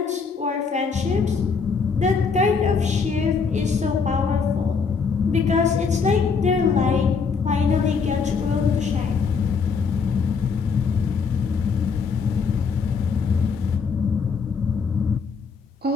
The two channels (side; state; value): right; quieter; 5.4 dB